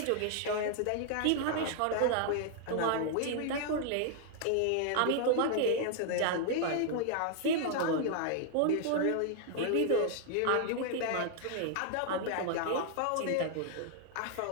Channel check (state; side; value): different; both; correlation 0.00